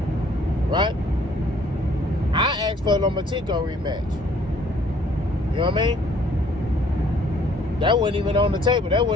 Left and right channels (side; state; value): both; normal; correlation 0.60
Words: right? I asked for a Lomachenko rematch. You know what I mean? That wasn't even on the table. That